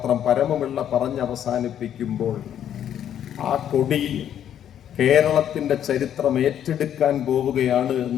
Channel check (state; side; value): quieter; right; 10.0 dB